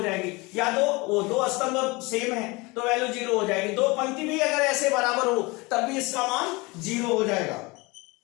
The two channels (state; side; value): quieter; right; 24.8 dB